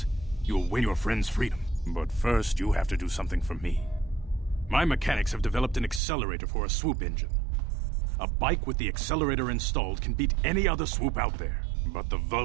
you'll win your friend's freedom. But first, you have to do something for me. My mechanics have developed an accelerator for a swoop engine. A bike with the accelerator installed can beat any other swoop out there. But the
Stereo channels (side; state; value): left; drops out; at 6.0 s